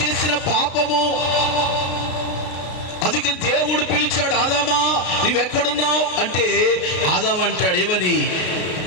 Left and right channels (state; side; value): late; right; 33 ms